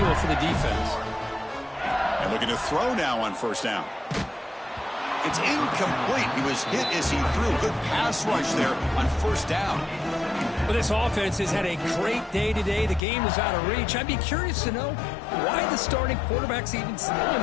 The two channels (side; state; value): right; drops out; at 13.0 s